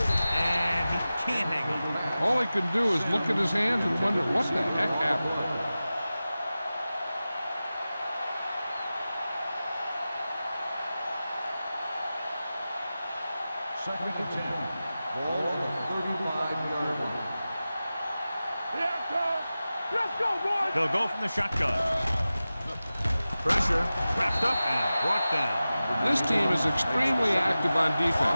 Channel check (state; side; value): inverted; both; correlation -0.95